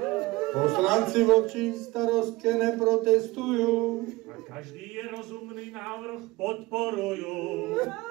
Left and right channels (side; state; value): left; quieter; 20.6 dB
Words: Poslanci voči starostke neprotestujú. A každý je rozumný návrh podporujú.